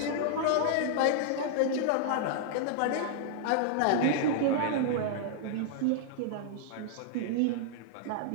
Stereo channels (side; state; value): both; different; correlation -0.01